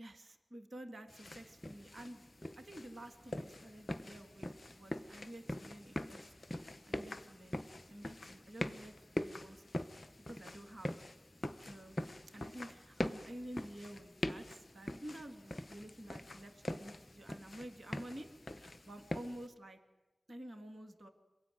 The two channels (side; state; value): both; normal; correlation 0.96